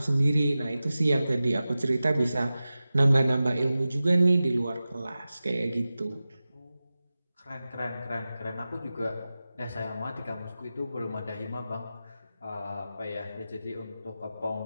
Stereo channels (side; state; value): both; inverted; correlation -0.95